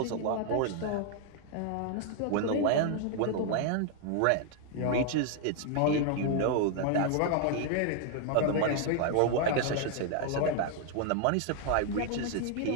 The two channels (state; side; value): different; both; correlation 0.00